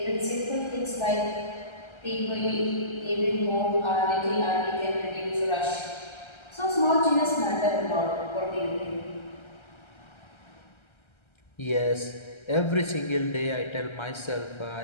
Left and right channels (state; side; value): late; right; 1.3 ms